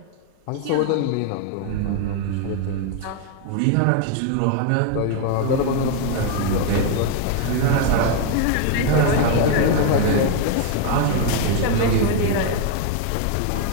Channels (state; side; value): different; both; correlation 0.01